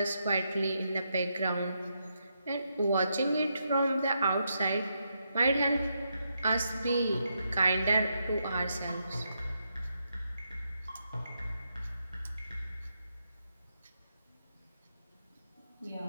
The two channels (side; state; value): both; inverted; correlation -0.81